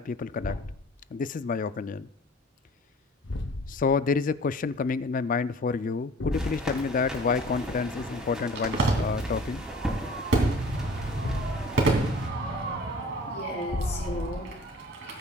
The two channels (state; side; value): normal; both; correlation 0.47